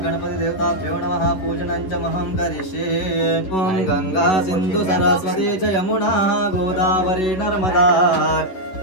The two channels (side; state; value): right; late; 11 ms